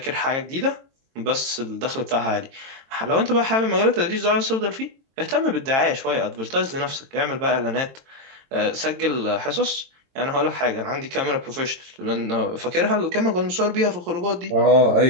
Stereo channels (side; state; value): left; late; 22 ms